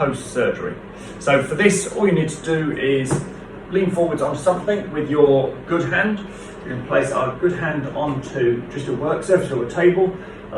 So for this, all you need to do is lean forwards on something with your good hand. You can place our good hand onto just a work surface or a table.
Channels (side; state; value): both; identical; correlation 1.00